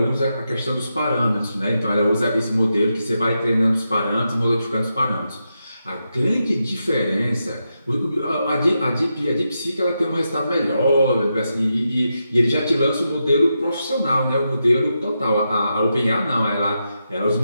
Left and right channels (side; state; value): both; inverted; correlation -0.86